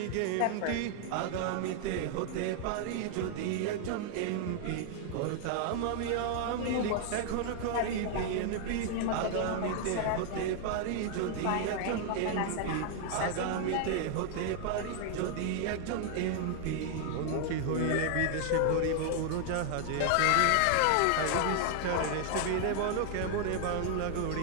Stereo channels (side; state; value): both; different; correlation 0.00